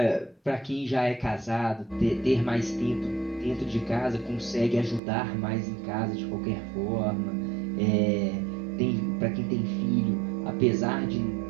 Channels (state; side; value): drops out; left; at 5.0 s